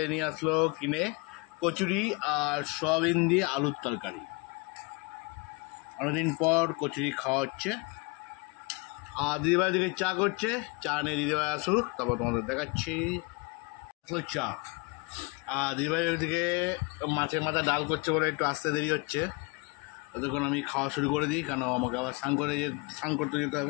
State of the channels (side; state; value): right; quieter; 28.1 dB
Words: নিয়ে আসলো কিনে কচুরি আর সয়াবিন দিয়ে আলুর তরকারি। অনেকদিন পর কচুরি খাওয়া হচ্ছে। আর দিদিভাই দিকে চা করছে। চা নিয়ে দিদিভাই আসুক, তারপর তোমাদের দেখাচ্ছি চা। আর দিদিভাই ওইদিকে মাছের মাথা ডাল করছে বলে একটু আসতে দেরি হচ্ছে। ততক্ষণ আমি খাওয়া শুরু করে দিই, কেন আমাকে আবার স্নান করতে যেতে